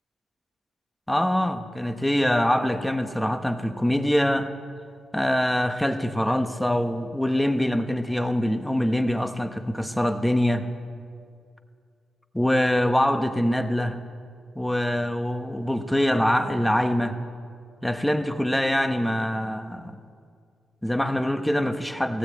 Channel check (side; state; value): both; normal; correlation 0.97